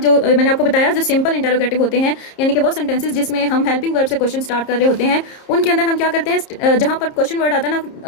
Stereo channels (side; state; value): right; late; 30 ms